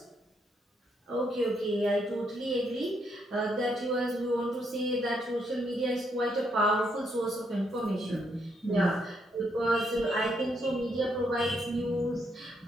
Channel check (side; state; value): both; normal; correlation 0.75